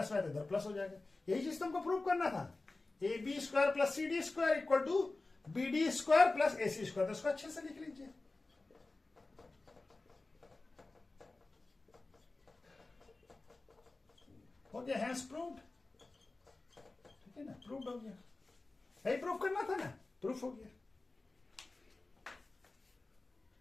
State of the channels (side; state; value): right; quieter; 3.3 dB